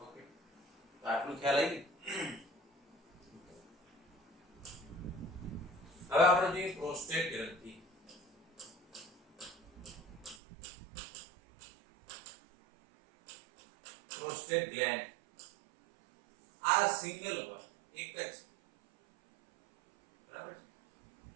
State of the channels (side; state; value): left; drops out; at 10.4 s